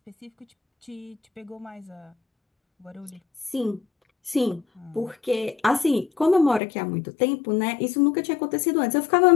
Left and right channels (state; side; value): drops out; right; at 6.6 s